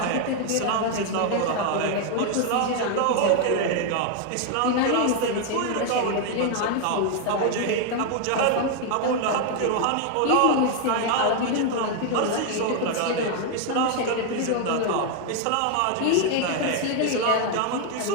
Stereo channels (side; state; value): both; different; correlation 0.00